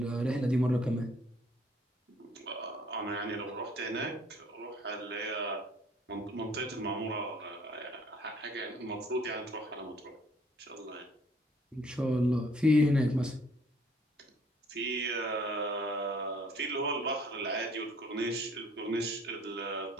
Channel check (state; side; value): normal; both; correlation 0.59